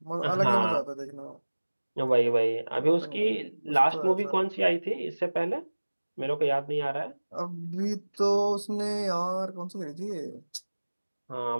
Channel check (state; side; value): inverted; both; correlation -1.00